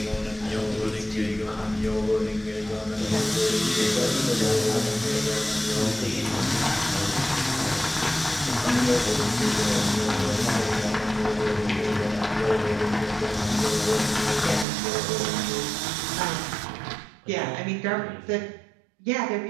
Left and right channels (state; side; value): drops out; left; at 14.7 s